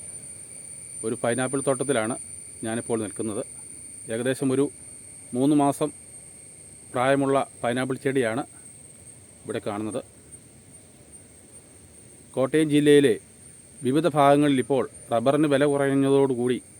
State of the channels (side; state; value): both; identical; correlation 1.00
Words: ഒരു പൈനാപ്പിൾ തോട്ടത്തിലാണ് ഞാനിപ്പോൾ നിൽക്കുന്നത്. ഏകദേശം ഒരു 3 മാസം പ്രായമുള്ള പൈനാപ്പിൾ ചെടിയാണ് ഇവിടെ കാണുന്നത്. കോട്ടയം ജില്ലയിലെ വിവിധ ഭാഗങ്ങളിൽ ഇപ്പോൾ റബ്ബറിന് വില കുറഞ്ഞതോടുകൂടി